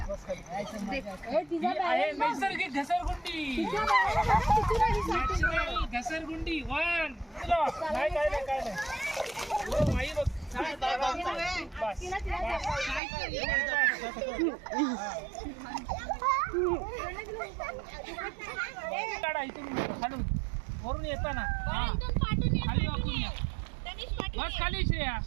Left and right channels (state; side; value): drops out; left; at 13.0 s